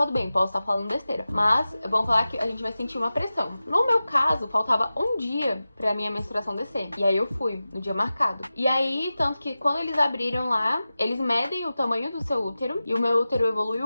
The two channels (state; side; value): inverted; both; correlation -0.95